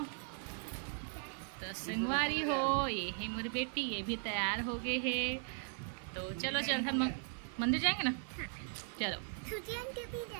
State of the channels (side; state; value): left; silent; 52 dB below the other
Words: तो संगवारी हो, ये है मेरी बेटी, ये भी तैयार हो गए है। तो चलो चल थन मंदिर जाएंगे ना। चलो छुट्टियां भी